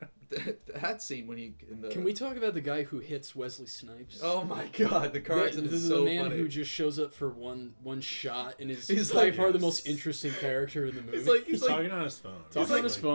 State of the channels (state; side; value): inverted; both; correlation -1.00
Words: That scene when he in the Can we talk about the guy who hits Wesley Snipes? Oh my God, the car accident This is is so the man funny. who just shows up for one shot and is He's by like- far the most interesting character in the movie. He's like Talking on his phone. Talking on his